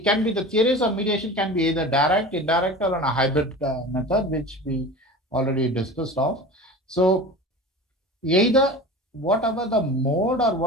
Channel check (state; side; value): normal; both; correlation 0.34